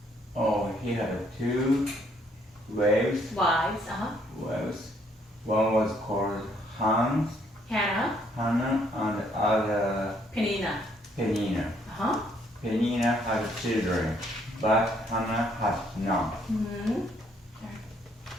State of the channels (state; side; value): normal; both; correlation 0.67